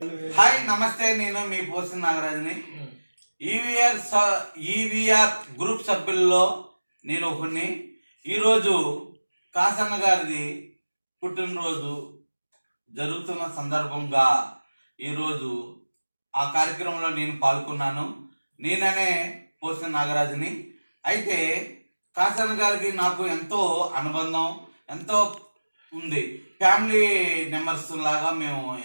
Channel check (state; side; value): inverted; both; correlation -1.00